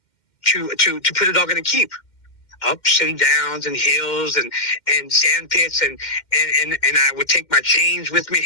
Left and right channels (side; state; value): right; late; 2.1 ms